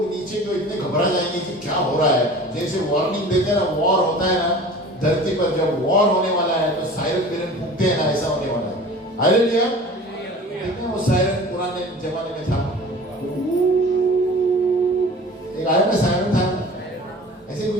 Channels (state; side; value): normal; both; correlation 0.41